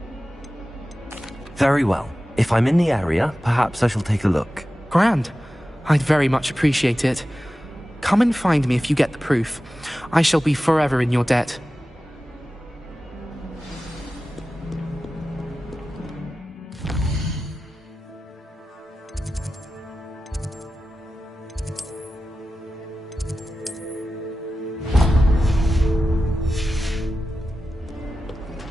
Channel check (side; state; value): both; normal; correlation 0.94